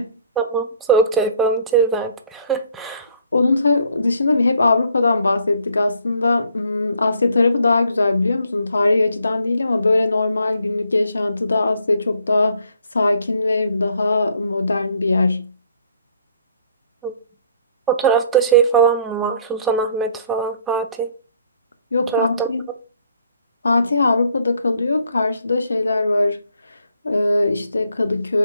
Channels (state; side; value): inverted; both; correlation -0.63